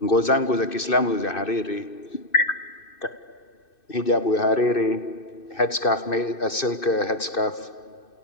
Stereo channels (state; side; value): late; right; 2.6 ms